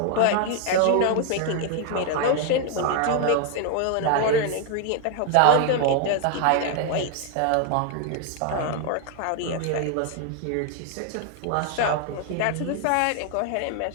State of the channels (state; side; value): different; both; correlation 0.00